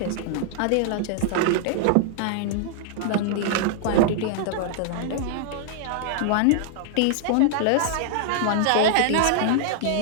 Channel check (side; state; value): both; different; correlation -0.01